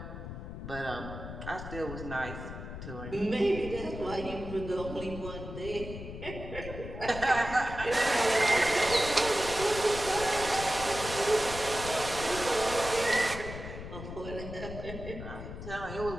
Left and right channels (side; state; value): left; noise; rumble, 9 dB below the sound